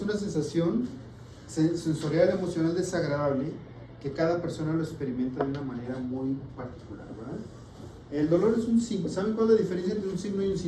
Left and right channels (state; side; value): identical; both; correlation 1.00